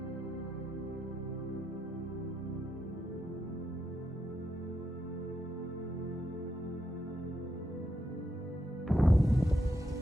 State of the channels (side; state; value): both; normal; correlation 0.82